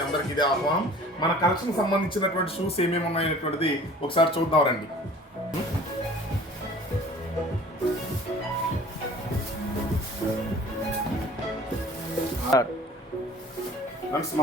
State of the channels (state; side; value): normal; both; correlation 0.47